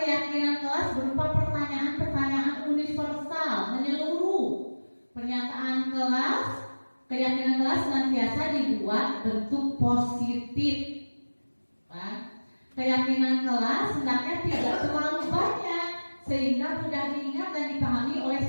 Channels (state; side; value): inverted; both; correlation -1.00